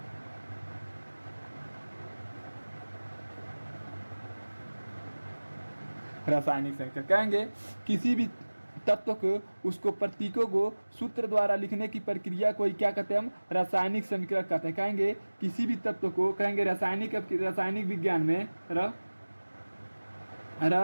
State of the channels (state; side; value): inverted; both; correlation -1.00